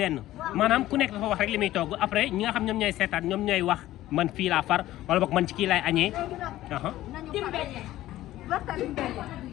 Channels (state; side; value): quieter; right; 15.0 dB